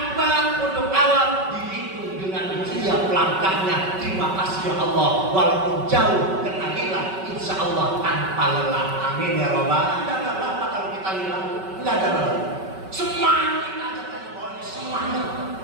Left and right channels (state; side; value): late; left; 5.3 ms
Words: untuk awal dihitung dengan siap langkahnya. Terima kasih ya Allah, walaupun jauh kena lillah, insyaallah tanpa lelah. Amin ya Rabbal. Enggak apa-apa kalau kita lillah, enggak ada lelah. Semangat aja pokoknya semangat.